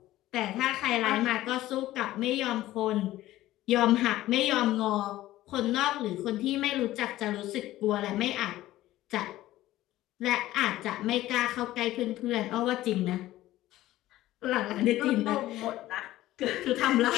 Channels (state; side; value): quieter; right; 15.4 dB